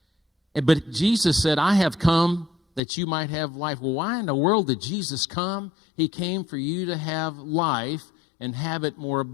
But Jesus said, I have come that you might have life. Well, why in the world did Jesus come? He came for you to have life and have it more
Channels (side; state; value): right; drops out; at 2.8 s